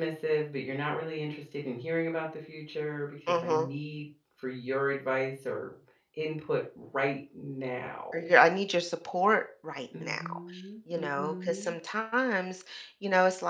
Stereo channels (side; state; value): both; identical; correlation 1.00